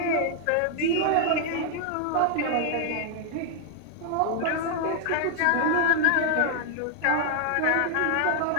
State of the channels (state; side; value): different; both; correlation 0.00